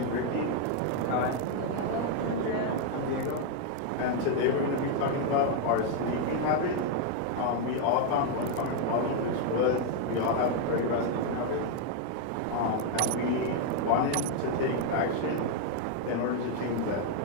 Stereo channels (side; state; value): both; different; correlation 0.00